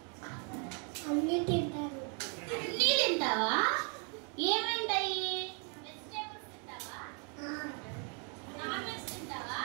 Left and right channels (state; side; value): quieter; left; 37.8 dB